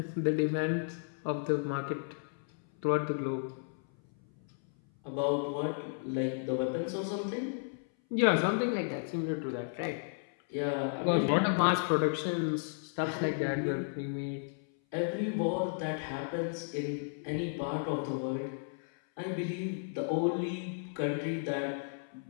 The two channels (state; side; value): silent; right; 55 dB below the other